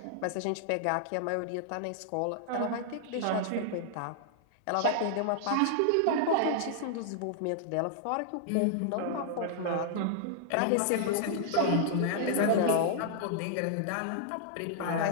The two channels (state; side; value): different; both; correlation -0.01